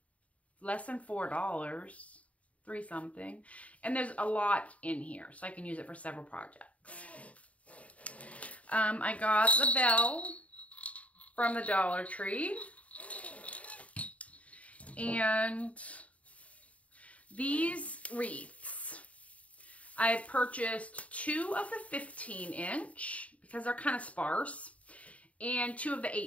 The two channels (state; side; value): late; right; 0.066 ms